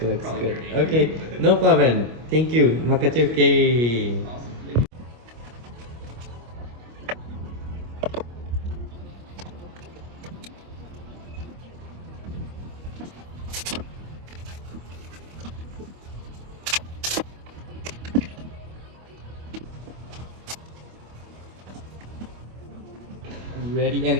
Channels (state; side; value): late; left; 25 ms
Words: looks probably good. dirty. Okay, no problem. Thank you. Makachuke. Awesome. Thank you. Ready?